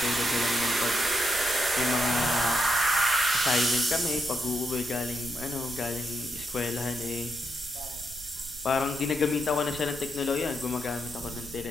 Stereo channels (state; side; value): noise; right; rumble, 17 dB below the sound